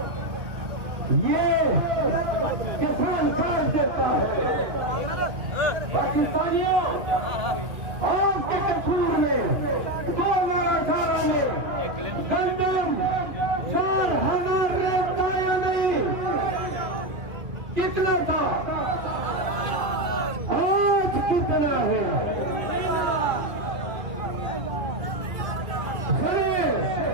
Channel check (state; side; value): late; left; 2.5 ms